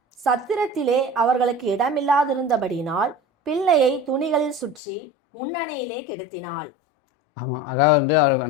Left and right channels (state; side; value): drops out; right; at 4.8 s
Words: சத்திரத்திலே அவர்களுக்கு இடமில்லாதிருந்தபடியினால் பிள்ளையை துணிகளில் சுற்றி முன்னணையிலே கிடத்தினாள். ஆமாம், அதாவது வந்து அவர்